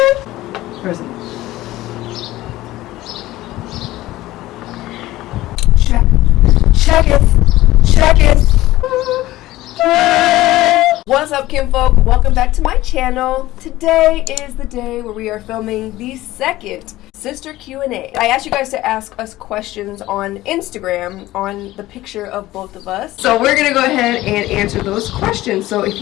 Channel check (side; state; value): right; quieter; 16.6 dB